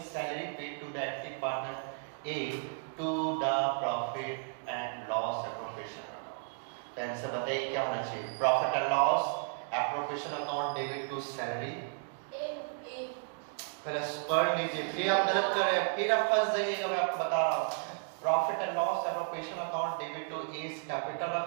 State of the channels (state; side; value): silent; left; 55 dB below the other